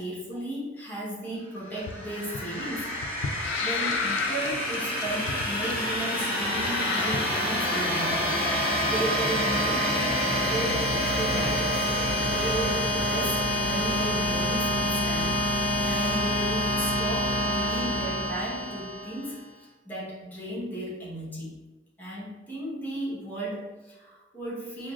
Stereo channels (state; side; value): normal; both; correlation 0.23